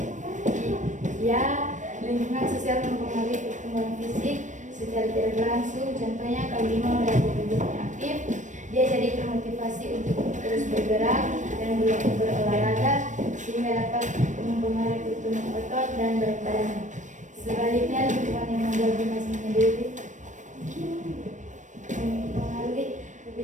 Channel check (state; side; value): late; left; 0.36 ms